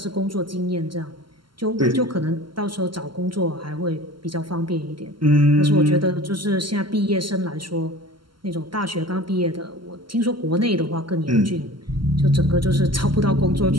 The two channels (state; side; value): late; left; 0.72 ms